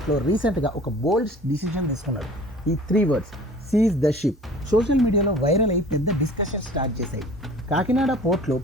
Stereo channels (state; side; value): normal; both; correlation 0.46